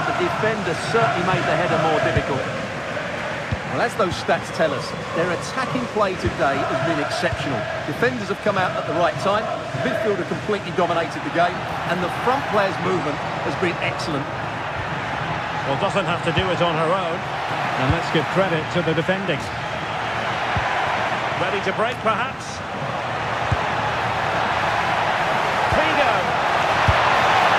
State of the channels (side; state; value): both; identical; correlation 1.00